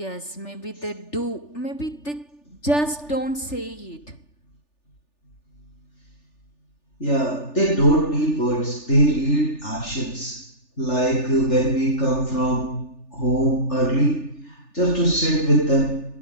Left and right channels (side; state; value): right; late; 3.4 ms